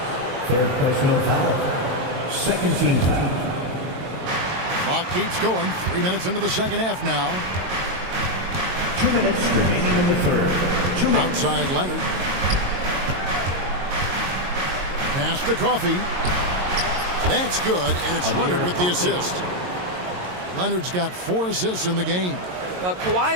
third personal foul. Second team foul. Clock keeps going. 3 minutes into the second half now. 2 minutes remaining in the third. 2 minutes. Outside Leonard. Pass to Coffey. That's good, and it's Leonard with the assist. Leonard's got 4 assists in the game. Well,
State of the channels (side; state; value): left; late; 22 ms